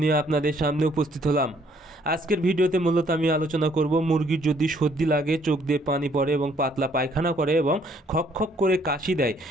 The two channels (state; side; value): normal; both; correlation 0.65